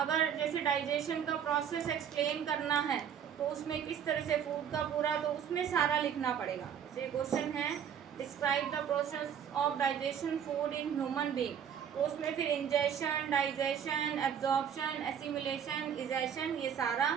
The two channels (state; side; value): quieter; left; 8.3 dB